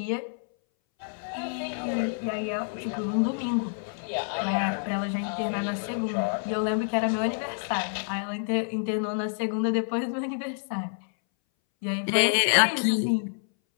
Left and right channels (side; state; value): right; silent; 59 dB below the other